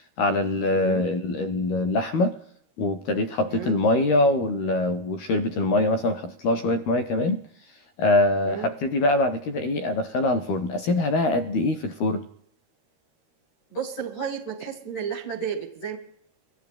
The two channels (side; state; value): right; late; 13 ms